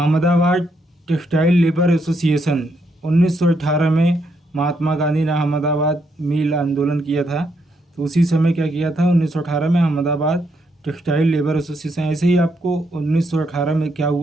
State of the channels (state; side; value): normal; both; correlation 0.77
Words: टेक्सटाइल लेबर एसोसिएशन 1918 में महात्मा गांधी ने अहमदाबाद मिल आंदोलन किया था, तो उसी समय क्या किया था? 1918 में अहमदाबाद टेक्सटाइल लेबर एसोसिएशन। ऐसे ही आपको 1918 में क्या